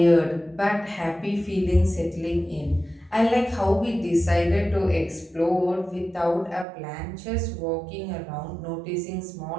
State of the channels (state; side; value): drops out; left; at 6.7 s